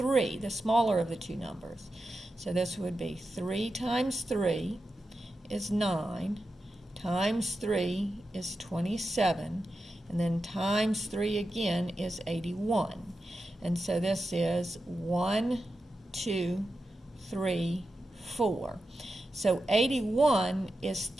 the smaller of the two numbers. So this would be 3 times 3 is 9, times 3 is 27, and then times 3 again is 81. And so this is 1, 2, 3, 4. So 81 is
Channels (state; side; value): normal; both; correlation 0.90